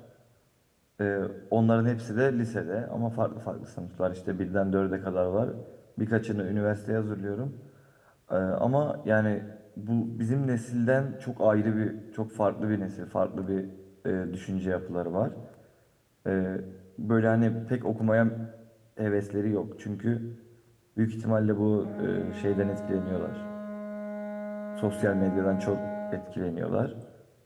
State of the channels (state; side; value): identical; both; correlation 1.00